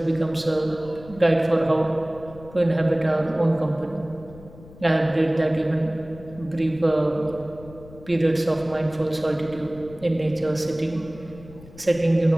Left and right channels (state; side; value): noise; left; rumble, 19 dB below the sound